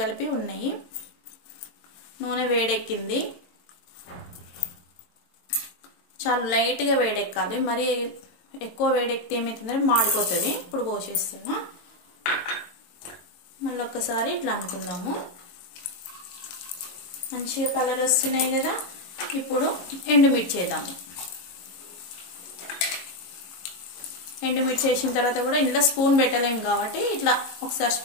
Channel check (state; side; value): late; right; 22 ms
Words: కలిపి ఉన్నాయి. నూనె వేడెక్కింది. చాలా లైట్గా వేడెక్కాలి, మరి ఎక్కువ వేడెక్కితే ఏమవుతుందంటే మాడిపోతుంది. ఇప్పుడు పోసేస్తున్నా. మళ్ళీ ఒక్కసారి ఇట్లా అనుకుందాము. మంచిగా కలర్ వస్తున్నాయి కదా. ఇప్పుడు ఎండుమిర్చి వేద్దాము. ఎండుమిర్చి వేసిన తర్వాత కూడా ఇంట్లో స్పూన్ పెట్టలేము కాబట్టి ఇట్లా ఒకసారి